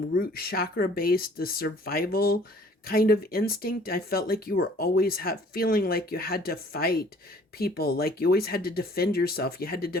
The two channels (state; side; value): normal; both; correlation 0.54